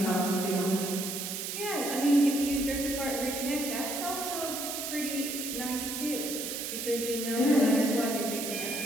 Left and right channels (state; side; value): noise; right; hiss, 4 dB below the sound